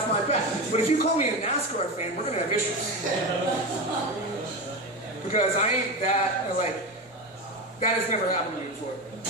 my back. But if you call me a NASCAR fan, we're gonna have issues. Because I ain't that, like, that has never happened to me before.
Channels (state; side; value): normal; both; correlation 0.20